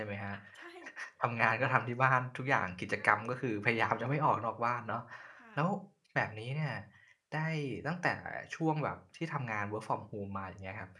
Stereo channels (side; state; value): both; identical; correlation 1.00